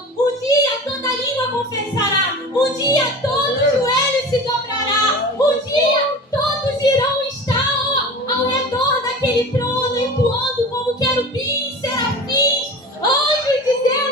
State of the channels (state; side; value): normal; both; correlation 0.35